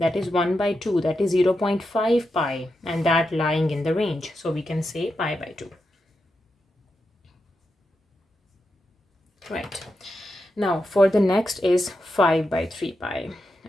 is 1 by 2, that is 0.5 pi, and that lying in the range. So we can say pi by 2. Right. Now for the next is 5 by 3 pi.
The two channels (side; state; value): both; normal; correlation 0.87